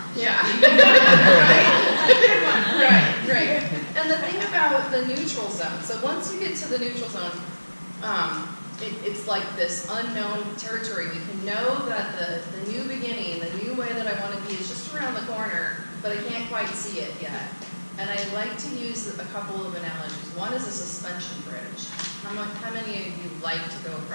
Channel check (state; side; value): inverted; both; correlation -1.00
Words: Yeah. Right. And the thing about the neutral zone, so once you get to the neutral zone, it's like this unknown territory. We can know that the new beginning, the new way that I want to be is just around the corner, but I can't quite see it yet. And I like to use a couple of analogies. One is a suspension bridge. How many of you like to go